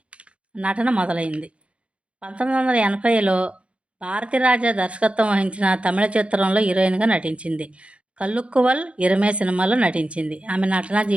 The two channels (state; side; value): late; left; 0.061 ms